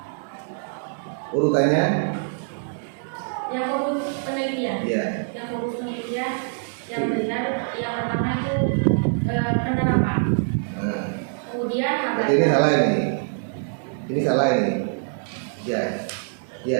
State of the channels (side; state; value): left; silent; 62 dB below the other